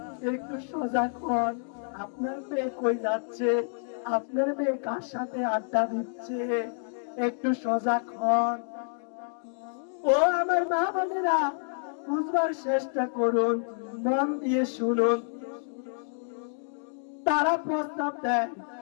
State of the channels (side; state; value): right; silent; digital silence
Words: একটু সজাগ হন। আপনার মেয়ে কই যাচ্ছে, আপনার মেয়ে কার সাথে আড্ডা দিচ্ছে, একটু সজাগ হন। ও আমার মা বোনেরা, বুঝবার চেষ্টা করুন, মন দিয়ে শুনুন। তারা প্রস্তাব দেয়